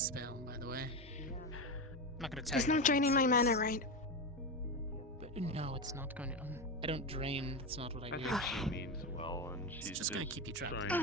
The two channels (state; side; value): normal; both; correlation 0.15